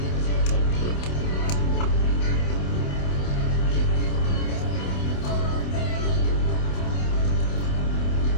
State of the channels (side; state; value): right; late; 28 ms